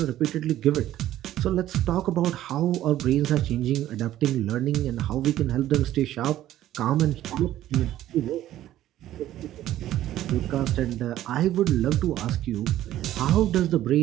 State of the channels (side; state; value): left; quieter; 13.3 dB